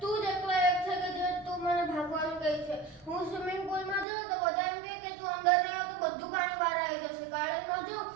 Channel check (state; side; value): drops out; left; at 4.0 s